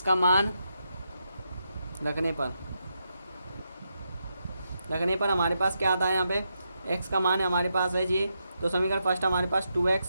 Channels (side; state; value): both; inverted; correlation -0.83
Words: का मान रखने पर हमारे पास क्या आता है, यहाँ पे x का मान हमारे पास है जी। तो समीकरण फर्स्ट हमारे पास